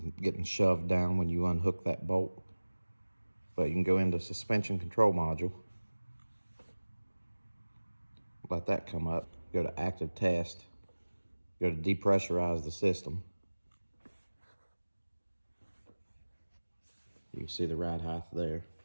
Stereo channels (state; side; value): inverted; both; correlation -1.00